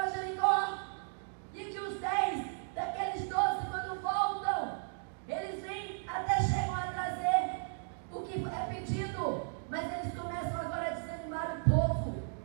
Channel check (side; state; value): left; silent; digital silence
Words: Jericó, e que os 10 daqueles 12, quando voltam, eles vêm, até chegam a trazer o que é pedido, mas eles começam agora a desanimar o povo